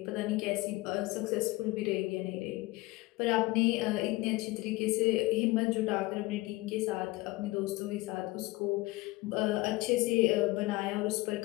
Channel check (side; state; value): right; quieter; 20.9 dB